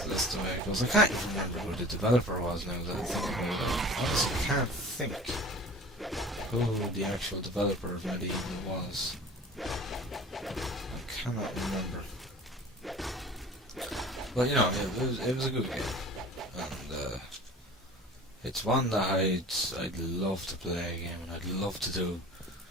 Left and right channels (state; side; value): normal; both; correlation 0.42